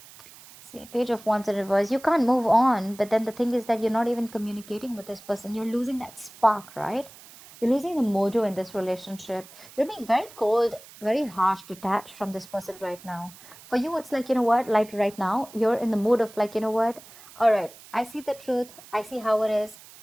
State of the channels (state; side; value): noise; right; hiss, 20 dB below the sound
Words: Page of Wands in reverse. You can't move on, but then the thing is that you're not even communicating with this person. You're losing that spark, right? You're losing the mojo in this relationship. You're being very cold, very harsh, detached from this person right now. For you, it's like, you know what, like right now, you're in the mood of like, you know what, all right, I see the truth. I see how it is.